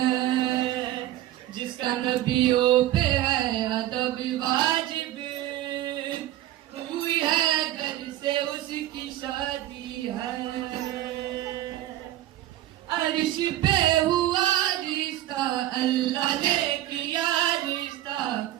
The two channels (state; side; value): quieter; left; 14.0 dB